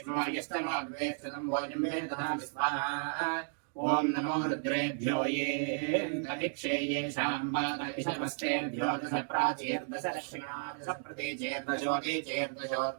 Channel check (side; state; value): left; silent; digital silence